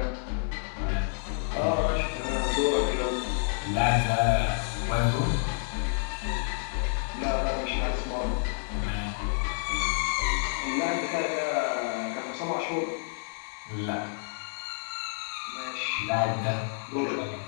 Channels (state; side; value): silent; right; digital silence